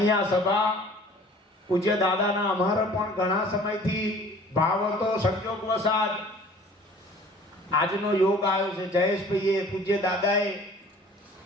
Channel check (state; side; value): normal; both; correlation 0.49